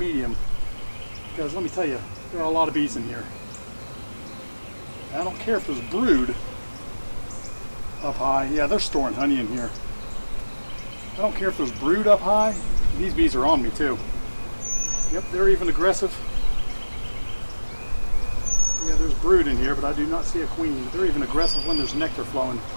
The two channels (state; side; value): inverted; both; correlation -1.00